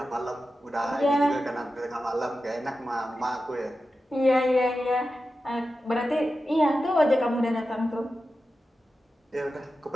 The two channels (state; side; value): normal; both; correlation 0.92